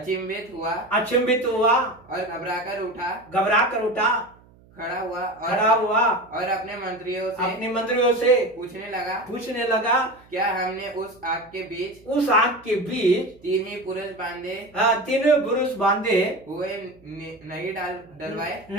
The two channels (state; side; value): noise; right; hum, 27 dB below the sound